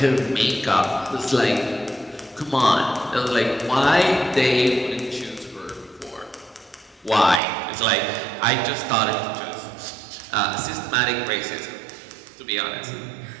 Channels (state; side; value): drops out; left; at 7.4 s